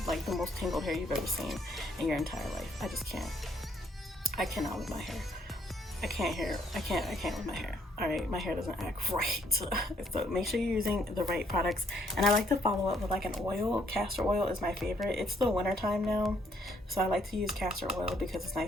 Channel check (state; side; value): normal; both; correlation 0.68